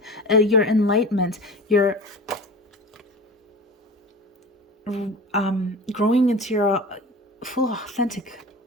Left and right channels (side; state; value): both; normal; correlation 0.35